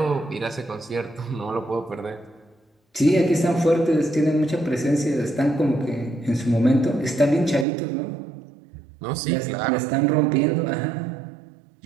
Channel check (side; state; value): left; drops out; at 7.7 s